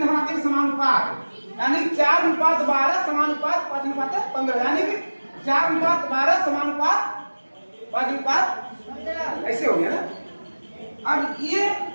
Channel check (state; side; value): inverted; both; correlation -1.00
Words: बनाते हैं समानुपात, यानी 4:12 समानुपात 5:15, यानी कि 4:12 समानुपात 5:15, ऐसे हो गया ना। अब ये